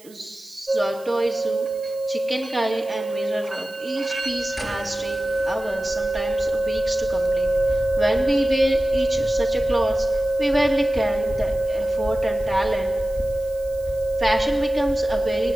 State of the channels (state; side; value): noise; right; hiss, 24 dB below the sound